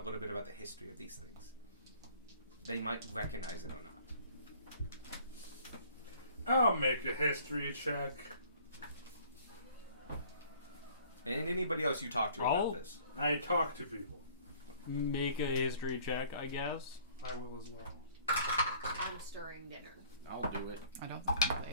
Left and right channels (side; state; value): both; inverted; correlation -0.54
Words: bit about the history of these things. They might recognize it or not. I'll make a history check. And anybody else you talk to I'll- about this. I talk to people. Make a history check, I guess. I will as well. I'm stirring dinner. I'll do it. I don't think I'm